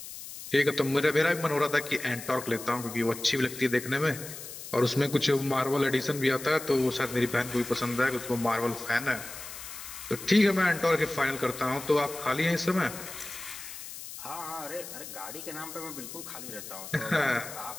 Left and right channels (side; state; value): left; noise; hiss, 11 dB below the sound